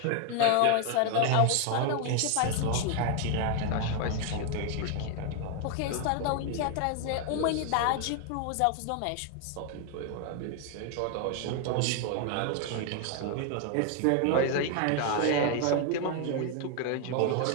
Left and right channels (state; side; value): different; both; correlation 0.00